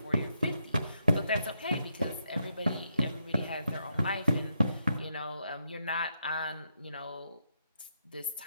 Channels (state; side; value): inverted; both; correlation -0.80